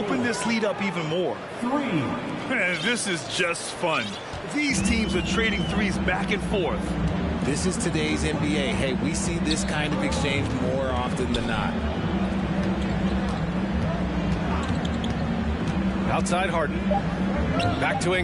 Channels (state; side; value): identical; both; correlation 1.00